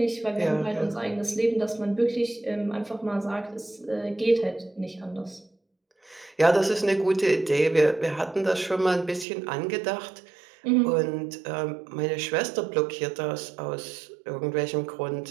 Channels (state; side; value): drops out; left; at 9.2 s